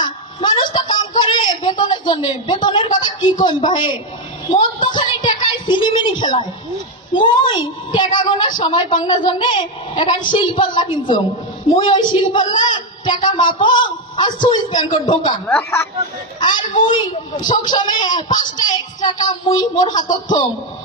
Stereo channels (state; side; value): normal; both; correlation 0.06